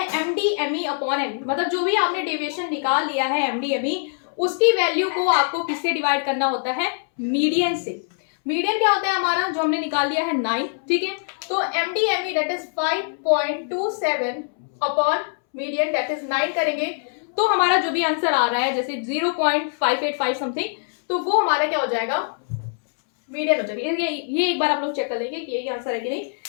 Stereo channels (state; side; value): silent; right; 63 dB below the other